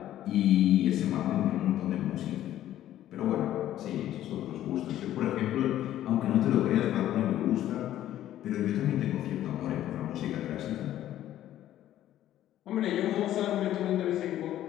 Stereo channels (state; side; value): quieter; right; 12.7 dB